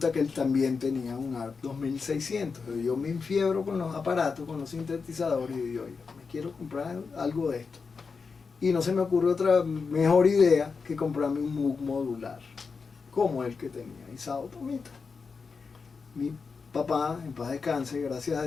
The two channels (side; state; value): right; quieter; 5.0 dB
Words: que él también tenía un ARP 2600. Yo me enfiebro con los aparatos, con los sintetizadores, y yo, me quiero comprar algo de esto. Y no se me ocurre otra mejor idea que comprarme un Moog modular, como el que tenía Isao Tomita. Mi papá, en paz descanse, gracias a